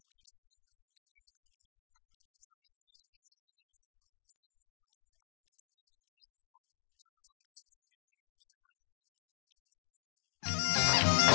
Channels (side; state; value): right; silent; 50 dB below the other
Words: göçü için Türkiye'nin dört bir tarafından katılım sağlayan dernek başkanlarımız ve Serinhisar'ın kıymetli halkı toplanmaya başladılar. Birazdan göçümüzle beraber şölen alanına doğru hareket edeceğiz.